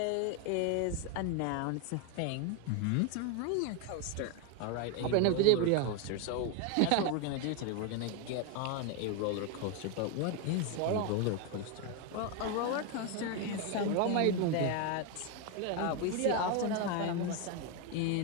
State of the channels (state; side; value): different; both; correlation 0.02